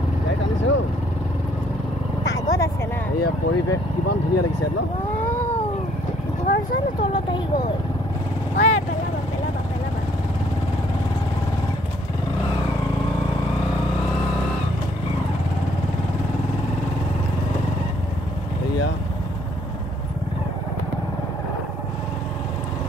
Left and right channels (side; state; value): both; normal; correlation 0.64